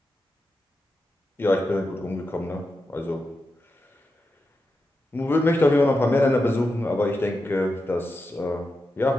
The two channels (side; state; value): both; normal; correlation 0.89